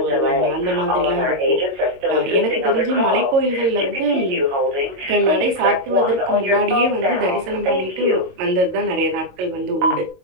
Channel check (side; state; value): left; late; 22 ms